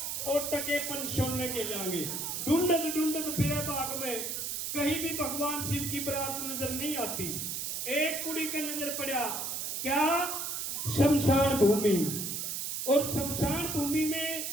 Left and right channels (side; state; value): right; noise; hiss, 3 dB below the sound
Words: और टके पन छोड़ने के जाएंगे। ढूंढत ढूंढत फिरे बाग में कहीं भी भगवान शिव की बारात नजर नहीं आती। एक कुड़ी का नजर पड़ा, क्या? शमशान भूमि। और शमशान भूमि में